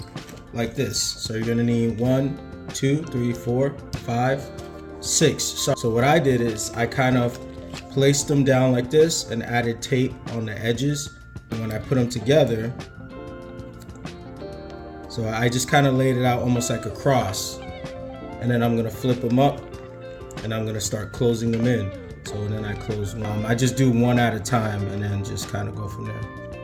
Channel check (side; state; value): both; identical; correlation 1.00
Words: like this. So you're gonna need 1, 2, 3, 4, 5, 6. So what I did is I kind of placed them down like this and added tape on the edges. And when I put them together, so I just kind of laid it out almost like a cross. And then I'm gonna flip them up and I'm gonna start closing them in. So then I close one. I just do one at a time and then just kind of go from there.